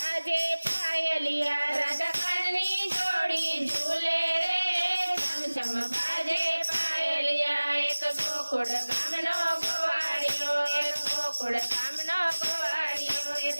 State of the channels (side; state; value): both; inverted; correlation -1.00